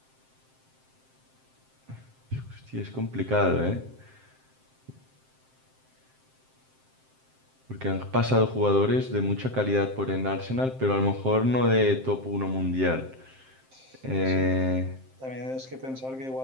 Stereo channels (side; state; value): left; late; 7.6 ms